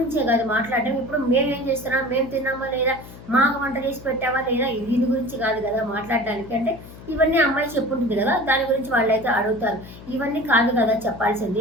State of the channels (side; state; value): left; noise; hum, 17 dB below the sound